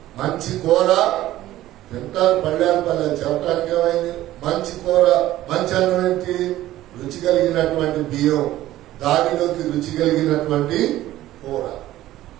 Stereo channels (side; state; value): left; quieter; 14.8 dB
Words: మంచి కూర తింటారు, పళ్ళారు చెప్పడానికి ఏమైంది? మంచి కూర, మంచి అన్నం ఏంటి? రుచి కలిగినటువంటి బియ్యం, దానిలోకి రుచి కలిగినటువంటి కూర.